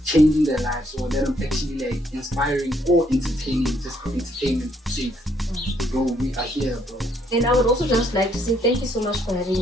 changing their lives, or that I'm actually like inspiring or entertaining, just for entertainment sake? Bro, we are here, bro. And I would also just like to say thank you so much for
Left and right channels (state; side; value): normal; both; correlation 0.70